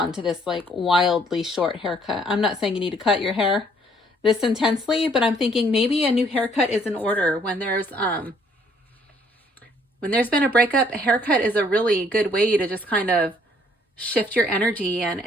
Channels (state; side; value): normal; both; correlation 0.64